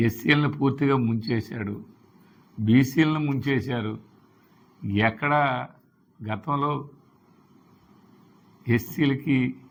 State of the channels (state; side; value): identical; both; correlation 1.00